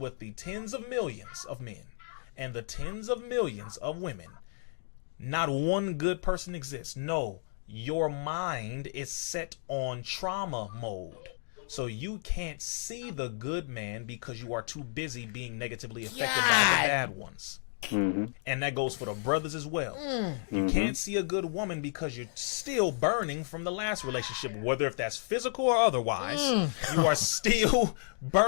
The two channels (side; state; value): right; silent; digital silence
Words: the tens of millions of men and the tens of millions of women, not one good person exists. No, your mind is set on trauma mode. So you can't see the good man because you are too busy being negatively affected by the bad ones. And that goes for the brothers as well. You can't see a good woman because you're still burning from the last relationship, whether if that's physical or otherwise. You are still